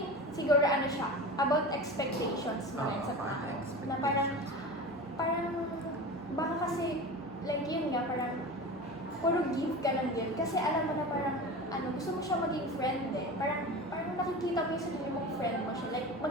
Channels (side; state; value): both; normal; correlation 0.30